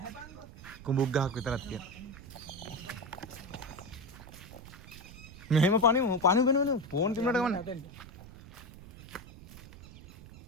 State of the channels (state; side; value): noise; right; rumble, 16 dB below the sound